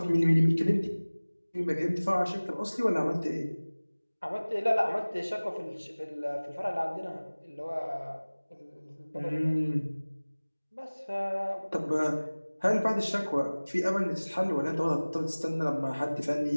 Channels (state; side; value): inverted; both; correlation -1.00